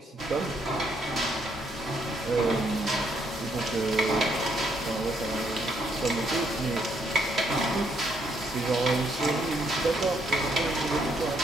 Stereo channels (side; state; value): both; normal; correlation 0.72